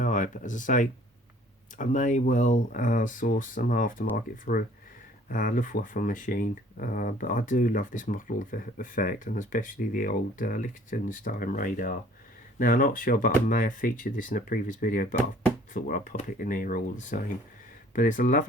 eye. But as I say, I may well source some aftermarket for a Luftwaffe machine, but I do love this model effect, and especially the old Liechtenstein radar. Now, I'm not sure, but I may have featured this in a previous video, but I thought, well, I'll pop it in here all the same. But it's a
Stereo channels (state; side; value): normal; both; correlation 0.55